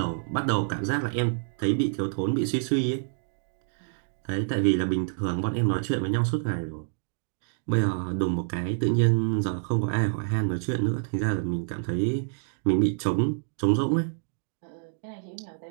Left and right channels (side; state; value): left; silent; digital silence